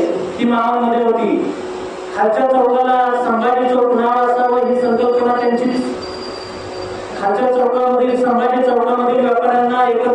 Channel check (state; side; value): identical; both; correlation 1.00